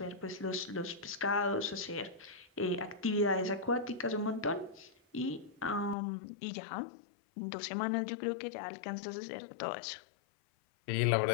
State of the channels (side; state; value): right; drops out; at 6.0 s